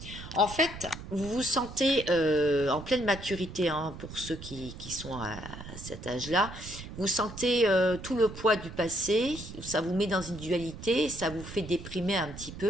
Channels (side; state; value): right; noise; rumble, 12 dB below the sound